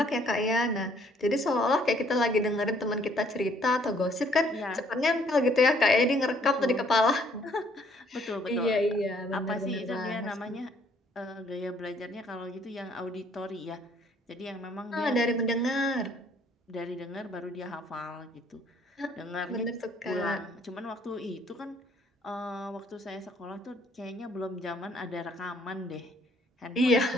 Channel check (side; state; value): both; normal; correlation 0.64